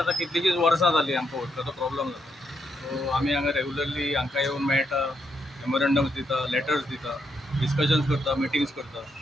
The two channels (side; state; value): both; normal; correlation 0.79